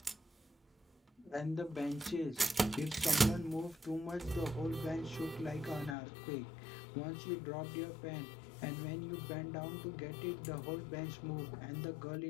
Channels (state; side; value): drops out; right; at 6.0 s